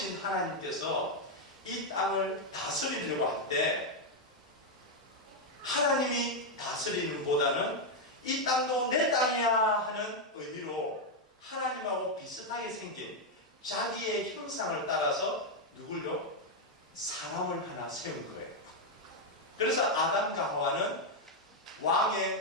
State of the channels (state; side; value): normal; both; correlation 0.01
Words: 하나님께서 이 땅을 다스리려고 할 때 하나님이 다스리는 보다는 이 땅도 내 땅이야 하는 의미로 하나님하고 비슷하게 생긴 자기의 형상을 따라서 누굴요? 사람을 하나 세운 거예요. 그래서 아담과 하와는